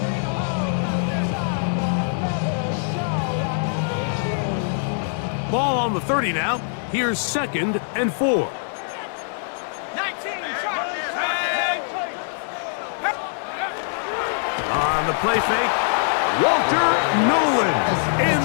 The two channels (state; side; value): silent; right; digital silence